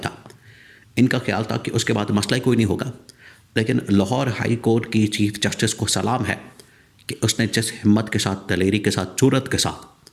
इनका ख्याल था कि उसके बाद मसला ही कोई नहीं होगा। लेकिन लाहौर हाई कोर्ट की चीफ़ जस्टिस को सलाम है कि उसने जिस हिम्मत के साथ, दलेरी के साथ, जुर्रत के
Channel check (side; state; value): both; identical; correlation 1.00